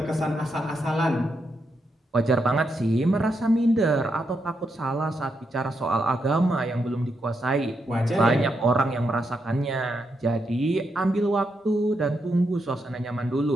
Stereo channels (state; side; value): normal; both; correlation 0.82